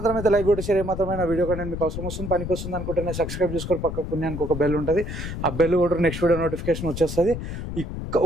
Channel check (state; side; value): noise; left; rumble, 6 dB below the sound